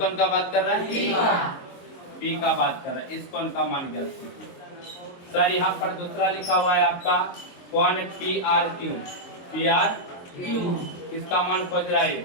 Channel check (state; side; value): late; right; 22 ms